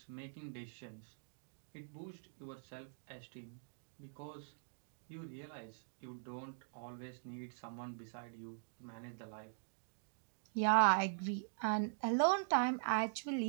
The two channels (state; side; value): silent; left; digital silence